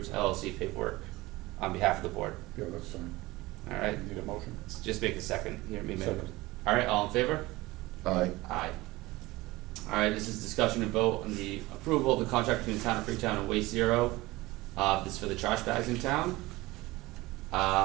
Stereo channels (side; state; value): left; quieter; 20.0 dB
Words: LLC paperwork on behalf of the board. yeah, that's fine. Alright, Need a motion? just make a second, hear me make. Second. Alright, all in favor? Aye. Aye. Alright, this is discussion and vote on the approval of the contract between the town of Freetown and Waste Zero. This is for the trash bags in town.